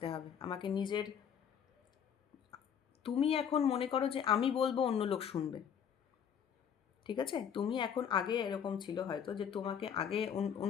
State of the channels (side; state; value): right; quieter; 8.1 dB